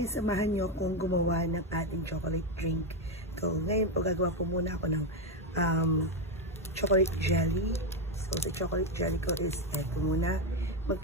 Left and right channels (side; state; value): both; normal; correlation 0.08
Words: samahan niyo akong gumawa ng ating chocolate drink. So, ngayon po gagawa po muna ako ng chocolate jelly. So, the chocolate jelly ko is eto muna.